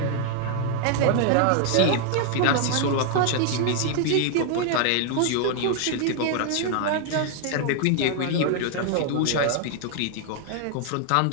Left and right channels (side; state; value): both; different; correlation 0.00